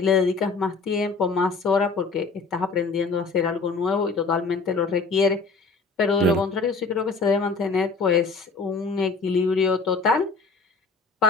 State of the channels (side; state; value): right; quieter; 4.2 dB